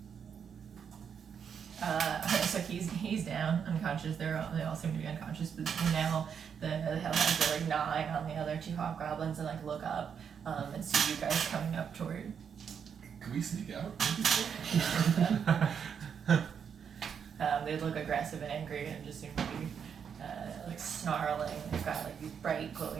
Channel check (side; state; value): left; quieter; 7.3 dB